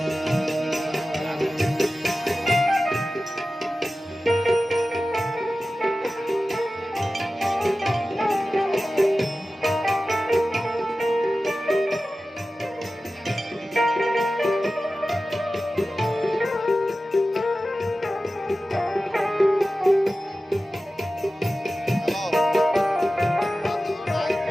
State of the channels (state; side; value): normal; both; correlation 0.95